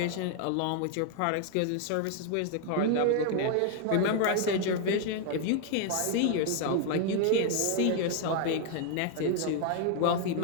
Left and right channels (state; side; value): different; both; correlation 0.00